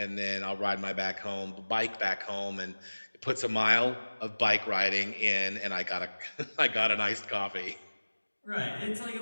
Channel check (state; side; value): inverted; both; correlation -1.00